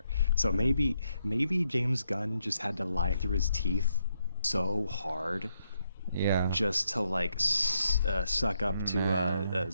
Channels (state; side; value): inverted; both; correlation -0.78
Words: So maybe James Gunn just had to lie through his teeth so hard Yeah. just to like suck up to